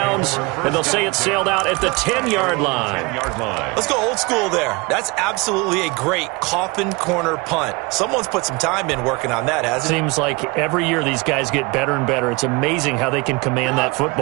And they'll say it sailed out at the 10-yard line. Let's go old school there. That's absolutely a great coffin corner punt. Someone's put some time in working on that, hasn't it? Seems like every year these guys get better and better. It's amazing how they can command that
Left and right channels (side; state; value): left; quieter; 26.2 dB